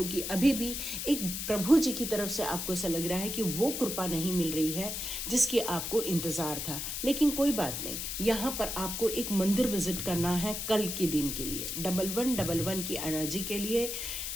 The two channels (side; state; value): left; noise; hiss, 4 dB below the sound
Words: अभी भी एक प्रभु जी की तरफ से आपको ऐसा लग रहा है कि वो कृपा नहीं मिल रही है जिसकी आपको इंतज़ार था। लेकिन कोई बात नहीं, यहाँ पर आपको एक मंदिर विजिट करना है कल के दिन के लिए, 1111 की एनर्जी के लिए।